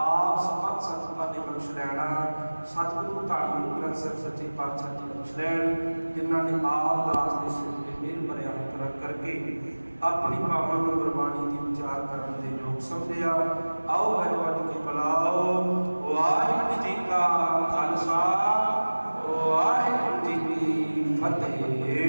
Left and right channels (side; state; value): both; inverted; correlation -1.00